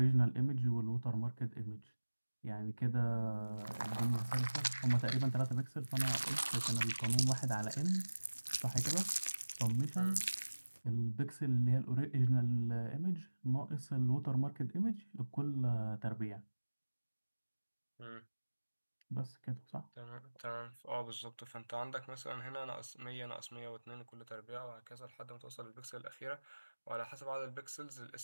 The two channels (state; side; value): inverted; both; correlation -1.00